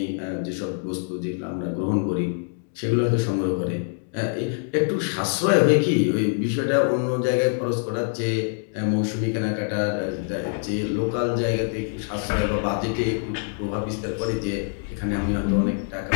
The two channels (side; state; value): right; silent; 62 dB below the other